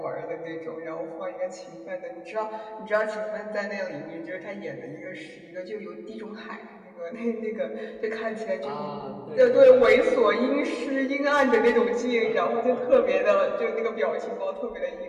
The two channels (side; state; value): both; identical; correlation 1.00